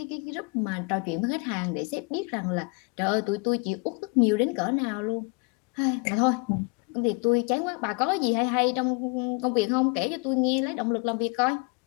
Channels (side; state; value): right; quieter; 31.8 dB